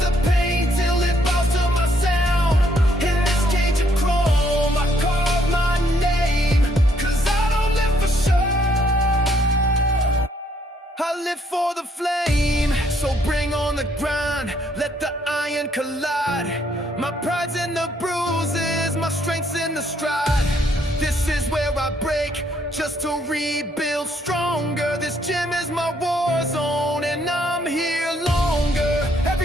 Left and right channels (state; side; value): normal; both; correlation 0.70